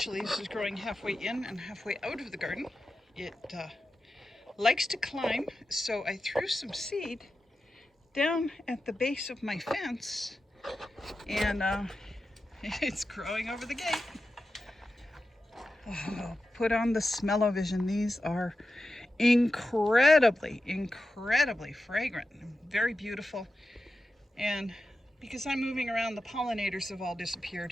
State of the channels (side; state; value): both; normal; correlation 0.92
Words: this is growing halfway in and halfway out of the garden. It likes to climb, so I threw some seed down at the base of my fence, and it's growing over the gate. Oh, put on the smell-o-vision. These are incredibly fragrant, very beautiful. And because I'm moving around, the pollinators have all